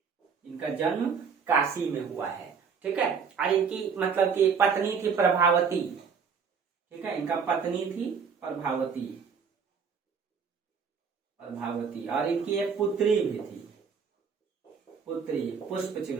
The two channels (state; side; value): quieter; left; 6.1 dB